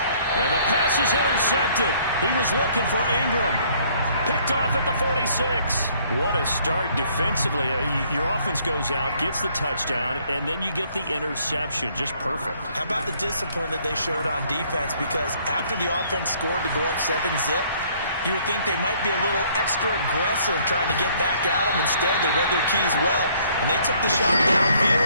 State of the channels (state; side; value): inverted; both; correlation -0.62